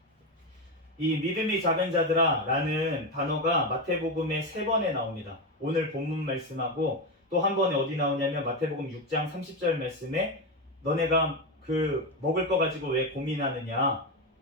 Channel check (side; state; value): both; normal; correlation 0.13